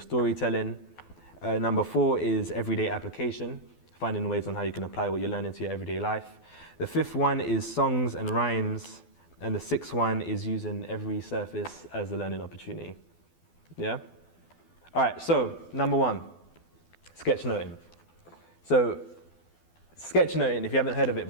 Number 4 is everyday application, finding ways on how you can apply what you learn into your everyday life. The 5th one is songs and rhymes. And the 6th one is using every surface as a learning opportunity. Yeah? All right, so number 1, sketchnoting. So sketchnoting, if you haven't heard of it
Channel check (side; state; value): right; late; 12 ms